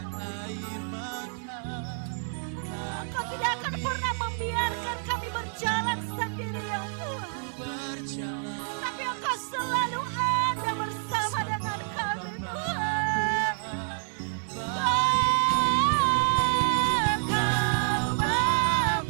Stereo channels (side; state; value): left; silent; 57 dB below the other